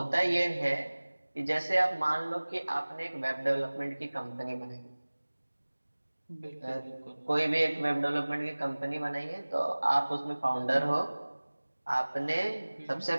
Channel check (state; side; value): inverted; both; correlation -1.00